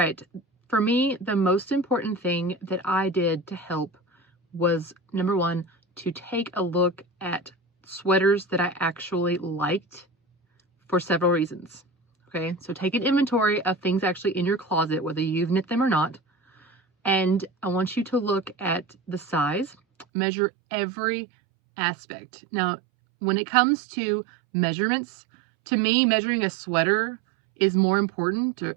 for me, the most important thing that I did to help was, number 1, to take a look at sweaters that I actually liked for several reasons. Okay, so take an inventory of things actually in your closet, whether you've knit them or not. And I want you to look at the size, measure every aspect. Now, when it comes to measurements, to me, measuring a sweater is more important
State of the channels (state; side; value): drops out; left; at 20.1 s